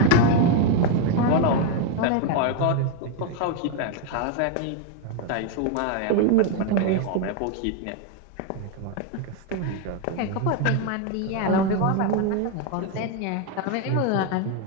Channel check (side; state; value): both; different; correlation 0.01